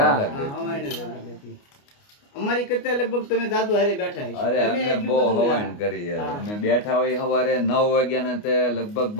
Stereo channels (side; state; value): right; late; 29 ms